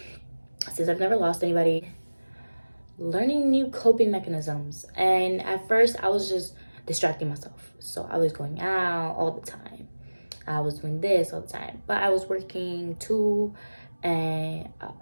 since I've never lost anybody, learning new coping mechanisms. And at first I was just distracting myself. So I was going out all the time. I was doing this all the time. But I was working too. And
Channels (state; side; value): inverted; both; correlation -1.00